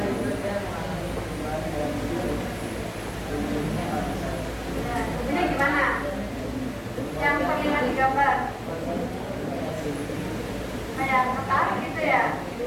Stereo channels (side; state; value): both; identical; correlation 1.00